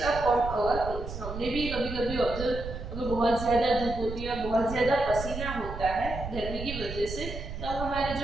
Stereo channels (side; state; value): right; noise; rumble, 8 dB below the sound